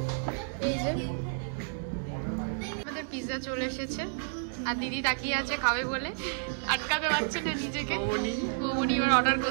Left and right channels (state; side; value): silent; left; digital silence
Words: আমাদের পিৎজা চলে এসেছে, আর দিদি তাকিয়ে আছে খাবে বলে, আটকাতে পারছে না নিজেকে। মৌবনি এবার অর্ডার